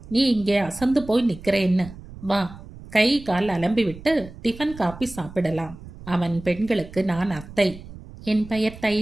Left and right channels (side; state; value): right; noise; rumble, 16 dB below the sound